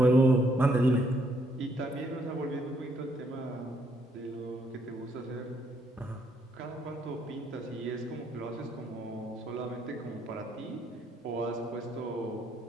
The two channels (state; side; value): normal; both; correlation 0.72